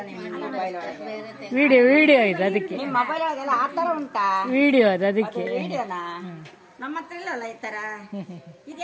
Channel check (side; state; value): both; identical; correlation 1.00